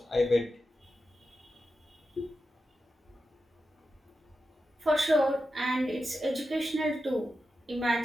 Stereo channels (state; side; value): normal; both; correlation 0.90